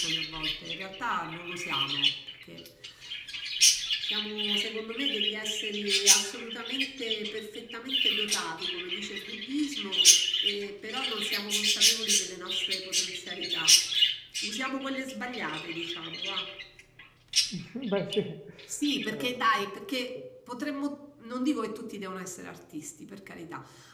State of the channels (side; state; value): both; identical; correlation 1.00